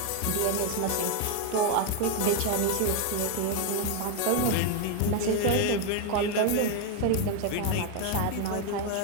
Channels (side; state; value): both; different; correlation 0.01